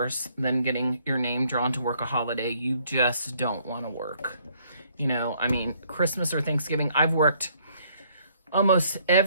than getting your name drawn to work a holiday you just don't want to work. You know, I mean, Christmas or Thanksgiving, I've worked almost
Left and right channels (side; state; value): both; inverted; correlation -0.66